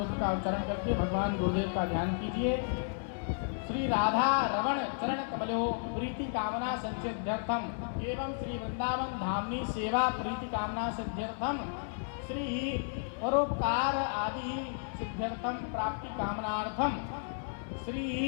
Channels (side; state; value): right; silent; digital silence